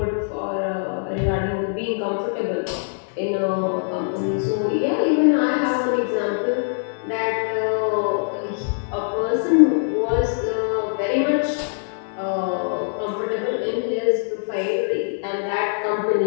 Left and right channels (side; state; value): right; silent; digital silence